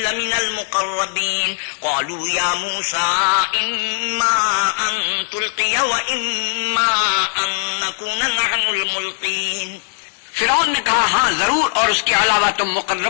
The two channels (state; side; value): silent; right; digital silence